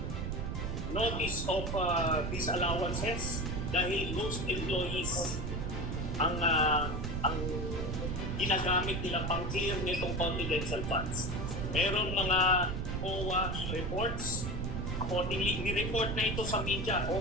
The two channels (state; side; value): noise; right; rumble, 3 dB below the sound